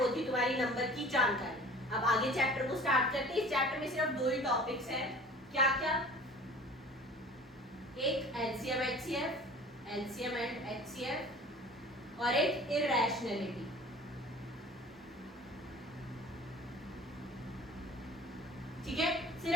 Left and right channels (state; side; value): normal; both; correlation 0.45